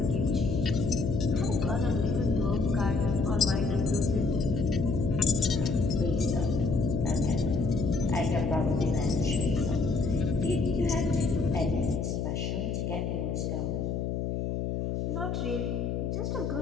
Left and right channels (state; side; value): noise; left; hum, 1 dB below the sound